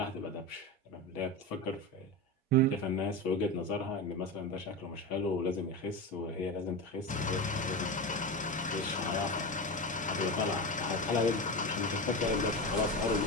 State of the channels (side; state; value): both; normal; correlation 0.21